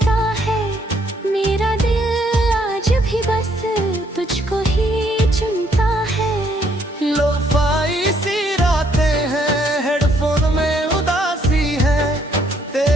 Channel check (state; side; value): normal; both; correlation 0.69